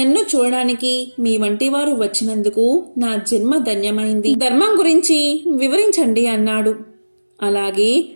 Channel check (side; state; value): both; inverted; correlation -1.00